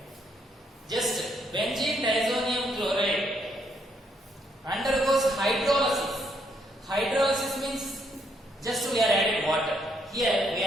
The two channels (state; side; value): normal; both; correlation 0.73